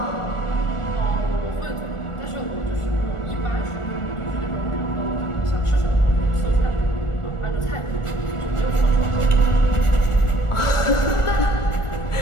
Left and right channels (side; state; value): right; late; 1.4 ms